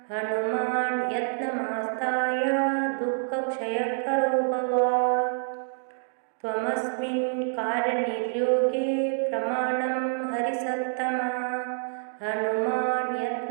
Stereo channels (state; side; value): silent; left; digital silence